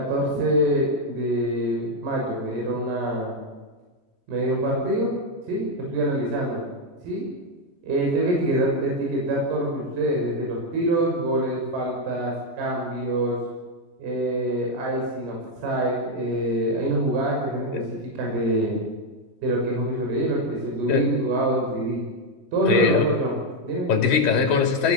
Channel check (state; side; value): late; left; 3.1 ms